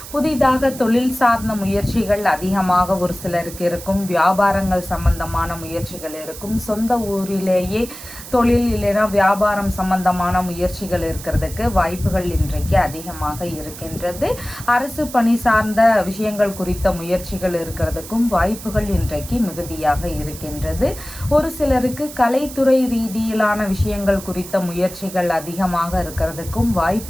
புதிதாக தொழில் சார்ந்த முயற்சிகள் அதிகமாக ஒரு சிலருக்கு இருக்கும். வியாபாரங்கள் சம்பந்தமான முயற்சிகள் இருக்கும். சொந்த ஊரிலேயே தொழில் இல்லைனா வியாபாரம் சம்பந்தமான முயற்சிகள் இருக்கிறதுக்கு வாய்ப்புகள் இன்றைக்கு அதிகமாக இருக்கின்றது. அரசு பணி சார்ந்த விஷயங்கள் குறித்த முயற்சிகள் இருக்கிறதுக்கும் வாய்ப்புகள் இன்றைக்கு மிகுதியாக இருக்கின்றது. ஒரு சிலருக்கு கலைத்துறை ரீதியிலான விஷயங்கள் குறித்த முயற்சிகள் அதிகமாக இருக்கிறதுக்கும்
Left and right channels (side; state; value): right; noise; hiss, 14 dB below the sound